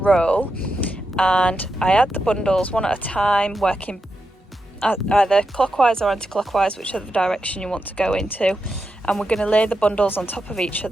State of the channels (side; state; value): both; normal; correlation 0.87